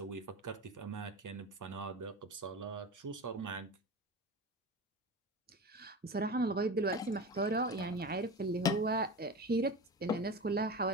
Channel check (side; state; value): both; normal; correlation 0.29